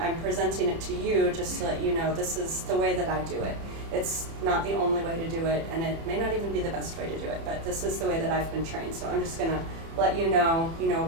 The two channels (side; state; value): left; late; 30 ms